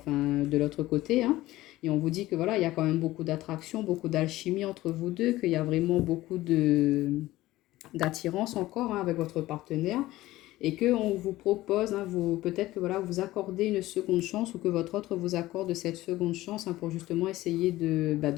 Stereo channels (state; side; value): quieter; right; 16.9 dB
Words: de l'autre côté. Et on vous dit que voilà, il y a quand même beaucoup d'attraction, beaucoup d'alchimie entre vous deux, qu'il y a vraiment beaucoup d'attirance encore avec votre partenaire. Et qu'on vous propose, peut-être que voilà, vous accordez une seconde chance, ou que votre autre vous accorde cette seconde chance pour justement essayer